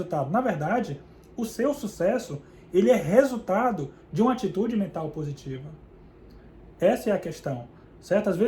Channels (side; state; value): both; identical; correlation 1.00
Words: Na verdade, o seu sucesso, ele é resultado de uma atitude mental positiva. Essa é a questão, certo? Às